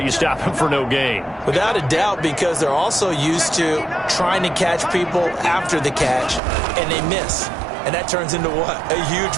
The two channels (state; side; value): drops out; left; at 6.4 s